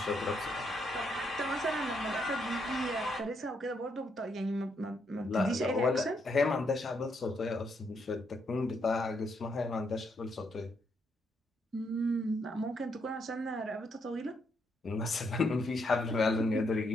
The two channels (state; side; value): normal; both; correlation 0.76